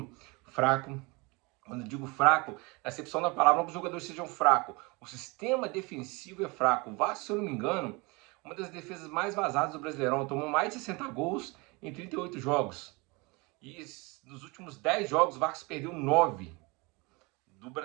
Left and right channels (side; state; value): left; quieter; 26.8 dB